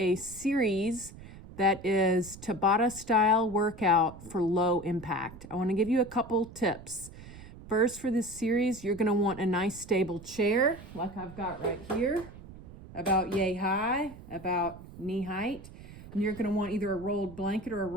series that is Tabata style workout for low impact. I want to give you a couple tips. First, for this series, you're going to want a nice stable chair like I've got right here, about yay high, about knee height. And you're going to want either a rolled blanket or a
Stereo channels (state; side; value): noise; right; rumble, 17 dB below the sound